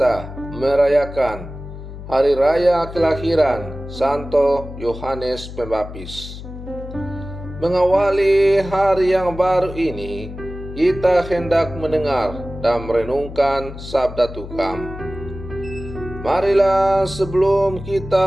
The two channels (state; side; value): noise; left; hum, 12 dB below the sound